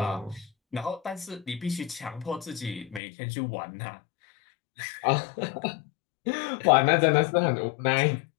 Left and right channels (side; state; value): right; drops out; at 3.0 s